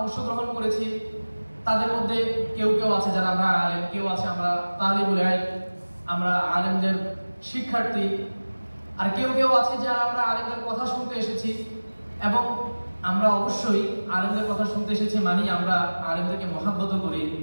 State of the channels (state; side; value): inverted; both; correlation -1.00